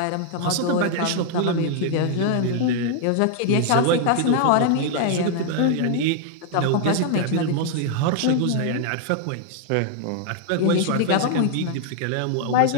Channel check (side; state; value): both; different; correlation 0.00